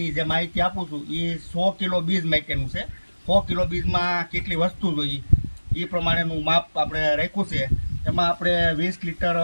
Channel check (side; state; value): both; inverted; correlation -1.00